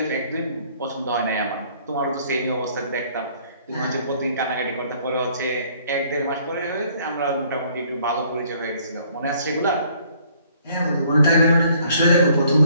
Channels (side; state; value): both; inverted; correlation -0.61